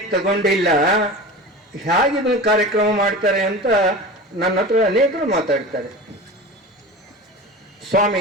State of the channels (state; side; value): normal; both; correlation 0.32